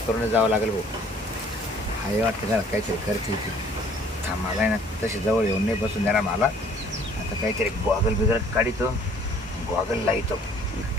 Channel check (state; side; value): normal; both; correlation 0.57